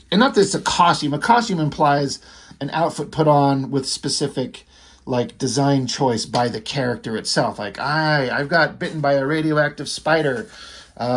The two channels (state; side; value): identical; both; correlation 1.00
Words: not that it's a costume. A costume implies an outfit put on with specific, like, design choice by the character itself. Like, I've got bitten by a radioactive spider.